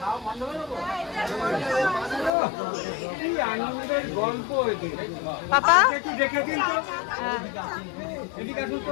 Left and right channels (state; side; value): drops out; right; at 2.3 s